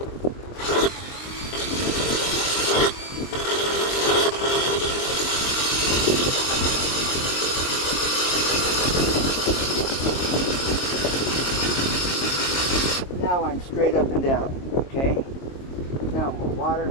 Now I'm straight up and down, okay? Now more water.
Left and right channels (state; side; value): late; right; 22 ms